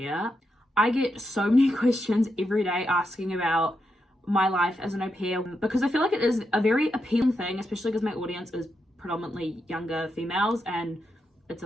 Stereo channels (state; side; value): normal; both; correlation 0.84